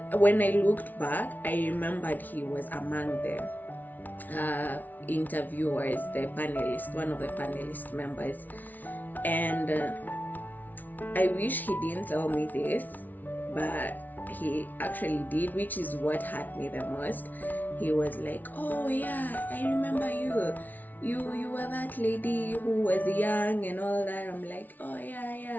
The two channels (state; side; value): late; right; 0.081 ms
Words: when I looked back, I remembered he was among the interviewers, the panelist, one of the panelist members. And I wish he didn't tell me this, but he actually did, which is what hurt me the most. He was like, oh yeah, I remember you. You were that lady who was young and all that. I'm like, oh